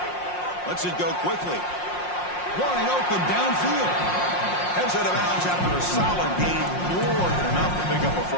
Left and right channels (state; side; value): late; right; 5.6 ms